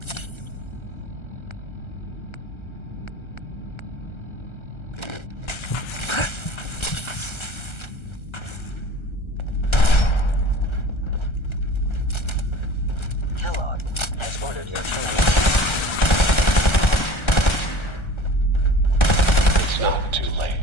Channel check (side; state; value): right; late; 1.3 ms